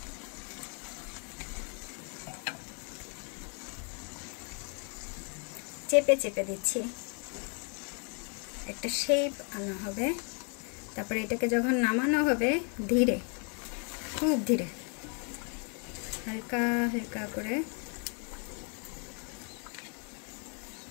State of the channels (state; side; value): quieter; right; 38.3 dB